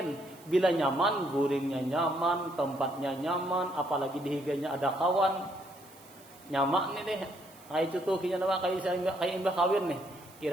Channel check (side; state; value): right; noise; hiss, 24 dB below the sound